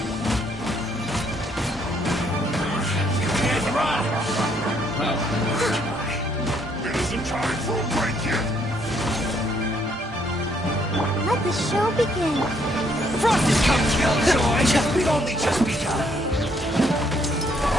You can't run! Well, it isn't time for a break yet! Let the show begin. Frost is come, Killjoy! We've only just begun!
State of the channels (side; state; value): both; normal; correlation 0.69